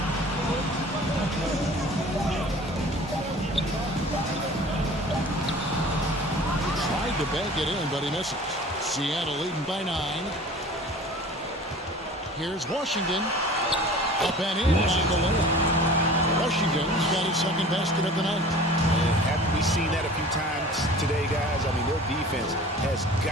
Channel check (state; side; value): normal; both; correlation 0.43